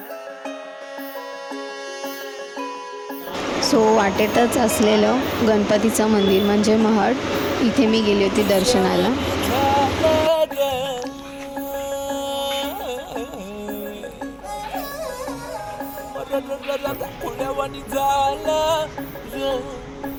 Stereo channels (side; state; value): both; identical; correlation 1.00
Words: वाटेतच असलेलं गणपतीचं मंदिर म्हणजे महड, इथे मी गेली होती दर्शनाला.